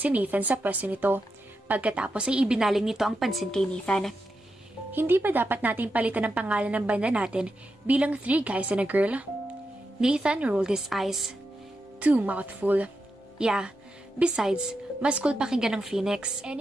Nathan sa pwesto nito. Pagkatapos ay ibinaling nito ang pansin kay Nathan. Hindi ba dapat nating palitan ang pangalan ng banda natin bilang 3 guys and a girl? Nathan rolled his eyes. Too mouthful. Yeah, besides, mas cool pakinggan ng Phoenix.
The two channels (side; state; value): both; normal; correlation 0.87